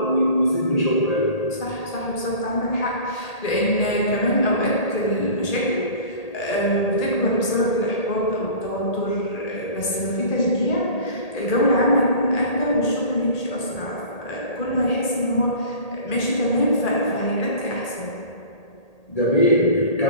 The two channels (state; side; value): late; right; 1.8 ms